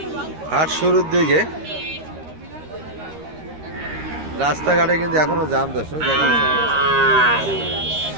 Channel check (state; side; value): late; left; 13 ms